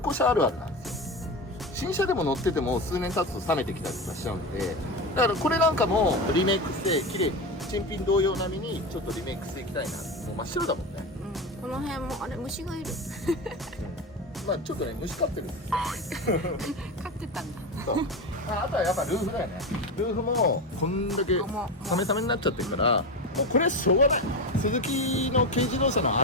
車あるあるなんですよ。新車でも乗ってても数年経つと冷めてきたりとかしちゃうんで、だからこれなんかもリメイクして綺麗に新品同様並みにちょっとリメイクしていきたいな。もう真っ白だもんね。この辺も虫がいる。ちょっとね虫飼ってるんですよ。飼ってたんだ。そうあとはやっぱルーフだよね。ルーフもこんだけサメサメになっちゃってるから、もうこれはしょうがない。スズキの軽自動車の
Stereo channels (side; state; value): both; normal; correlation 0.20